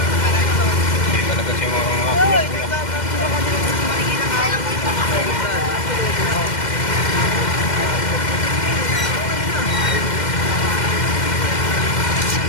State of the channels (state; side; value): late; right; 2.1 ms